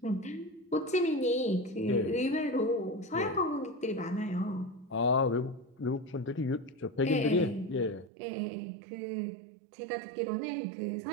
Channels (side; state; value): left; drops out; at 8.1 s